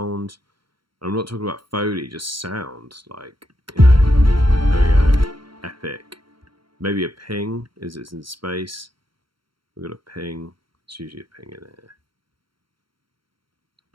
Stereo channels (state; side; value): late; left; 0.73 ms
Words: I'm not talking about Foley, just sound. Like, you know, there we go. Epic. Maybe a ping. Is it's in space? We've got a ping. It's usually a ping in here.